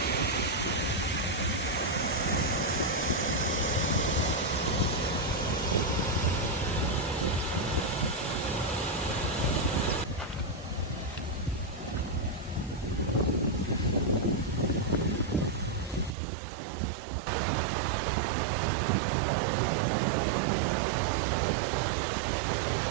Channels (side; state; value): left; drops out; at 16.1 s